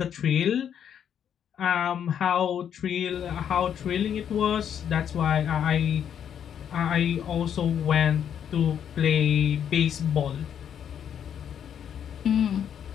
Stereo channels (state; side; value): quieter; right; 8.8 dB